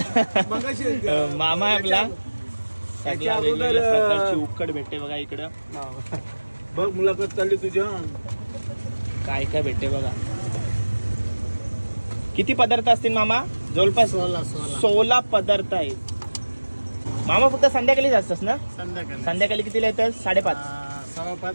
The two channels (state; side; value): inverted; both; correlation -1.00